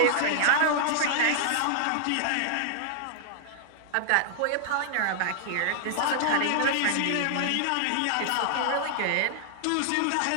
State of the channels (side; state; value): both; different; correlation -0.01